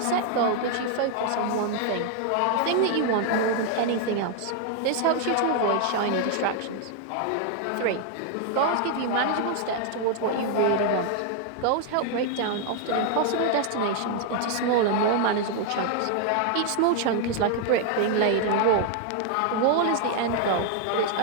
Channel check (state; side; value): different; both; correlation 0.00